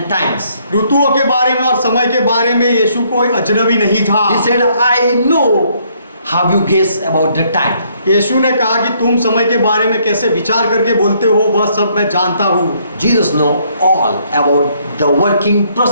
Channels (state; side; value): inverted; both; correlation -0.68